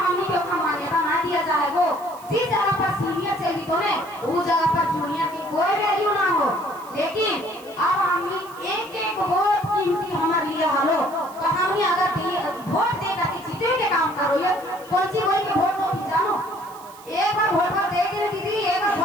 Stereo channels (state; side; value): noise; right; hiss, 22 dB below the sound